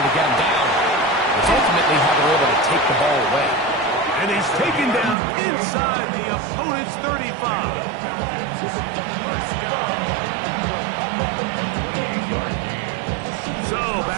to get him down, it's ultimately how they're able to take the ball away. And he's taken down inside the opponent's 35. So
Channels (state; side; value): drops out; left; at 5.2 s